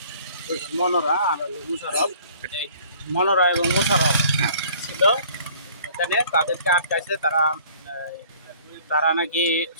দুজন মনোরা আর হলো মুশারফ, এই মনোরা এবং মুশারফ ছিল এখানে। তাদেরকে আটকাইছে তারা। তারা নাকি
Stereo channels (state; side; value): inverted; both; correlation -0.54